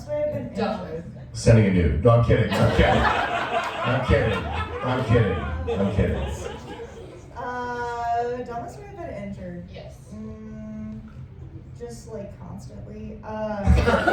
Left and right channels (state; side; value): identical; both; correlation 1.00